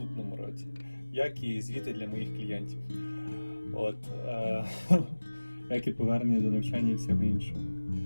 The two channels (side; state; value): both; inverted; correlation -1.00